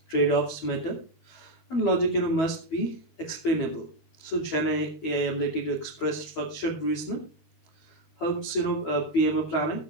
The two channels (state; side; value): late; right; 12 ms